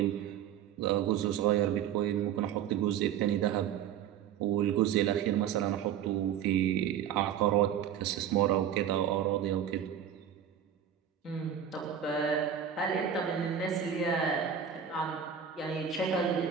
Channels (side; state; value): left; quieter; 8.9 dB